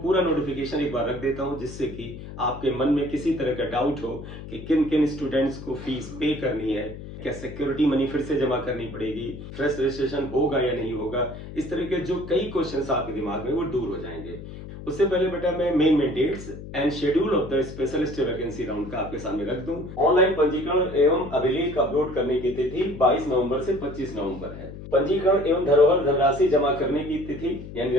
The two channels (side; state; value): left; noise; hum, 12 dB below the sound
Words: नोटिफिकेशन एक बार रख देता हूं, जिससे कि आपके मन में किसी तरह का डाउट हो कि किन किन स्टूडेंट्स को फीस पे करनी है, क्या सिक्योरिटी मनी फिर से जमा करनी पड़ेगी, फ्रेश रजिस्ट्रेशन होगा या नहीं होगा। इस तरह के जो कई क्वेश्चंस आपके दिमाग में वो दूर हो जाएंगे। उससे पहले बेटा मैं main dates and schedule of the specialist vacancy round का आपके सामने रख दूं। ऑनलाइन पंजीकरण एवं अभिलेख अपलोड करने की तिथि 22 नवंबर से 25 नवंबर है। पंजीकरण एवं धरोहर धनराशि जमा करने की तिथि यानी